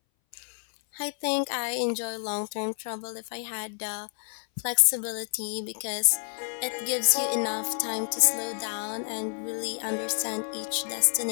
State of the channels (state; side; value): silent; right; 59 dB below the other